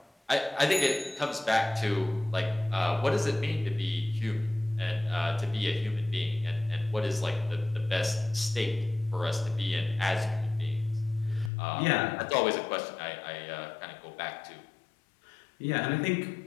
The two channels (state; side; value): drops out; right; at 11.5 s